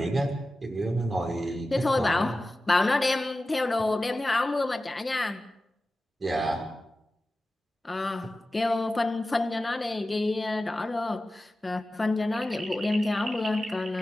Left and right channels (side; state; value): both; normal; correlation 0.95